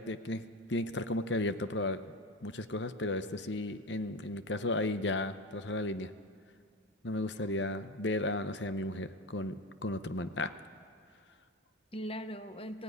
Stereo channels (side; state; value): both; normal; correlation 0.22